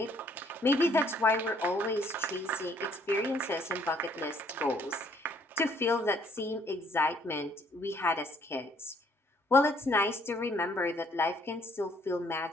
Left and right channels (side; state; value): both; normal; correlation 0.64